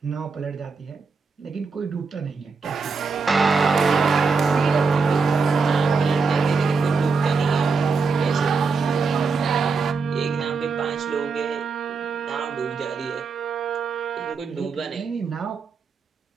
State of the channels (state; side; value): quieter; left; 4.8 dB